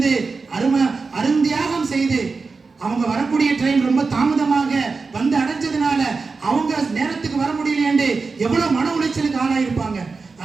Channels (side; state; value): left; quieter; 4.4 dB